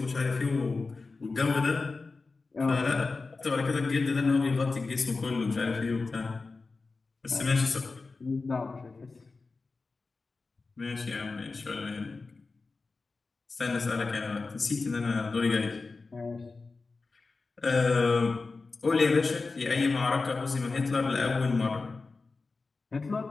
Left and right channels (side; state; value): right; quieter; 3.9 dB